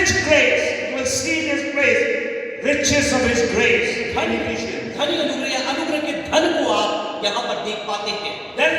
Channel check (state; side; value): identical; both; correlation 1.00